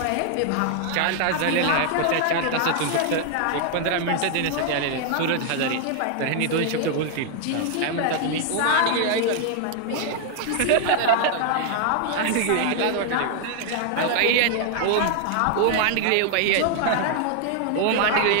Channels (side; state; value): both; different; correlation 0.00